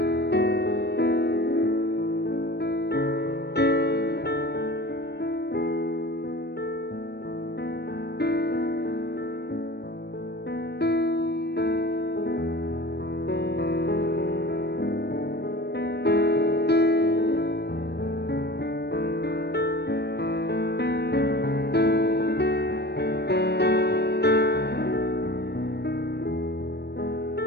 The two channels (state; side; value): late; right; 0.48 ms